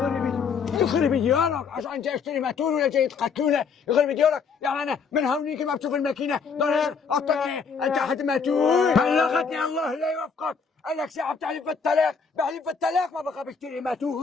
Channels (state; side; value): quieter; right; 5.6 dB